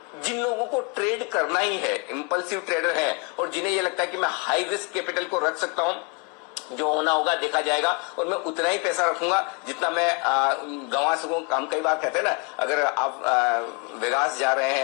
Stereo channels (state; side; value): quieter; right; 32.7 dB